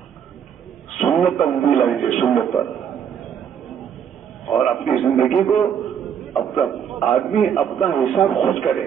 سنت پر بھی لگیں گے، سنت پر. اور اپنی زندگی کو آدمی اپنا حساب خود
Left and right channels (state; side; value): quieter; left; 8.2 dB